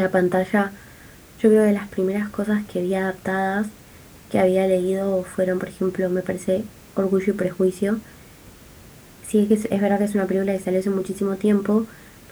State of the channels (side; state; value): both; identical; correlation 1.00